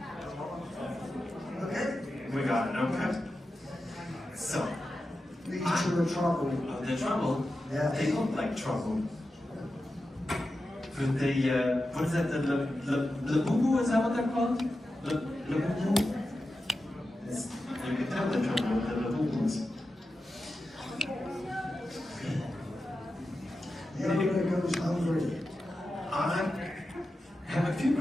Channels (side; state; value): both; normal; correlation 0.91